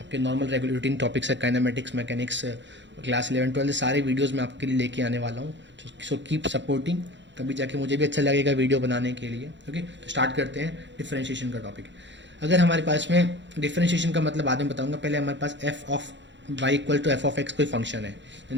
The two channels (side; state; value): left; late; 0.53 ms